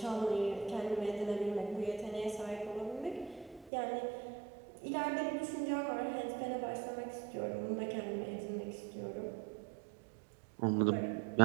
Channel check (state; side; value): drops out; left; at 3.7 s